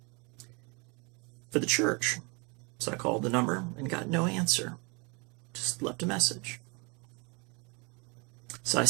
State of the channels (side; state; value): left; quieter; 30.7 dB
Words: for the church. So I called the number and got no answer. Just left a message. So I